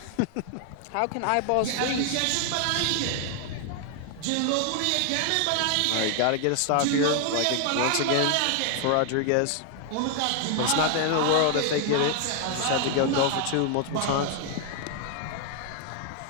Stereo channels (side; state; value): both; different; correlation 0.00